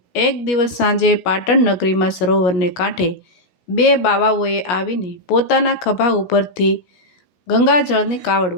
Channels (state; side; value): late; right; 17 ms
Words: એક દિવસ સાંજે પાટણ નગરીમાં સરોવરને કાંઠે બે બાવાઓએ આવીને પોતાના ખભા ઉપરથી ગંગાજળની કાવડ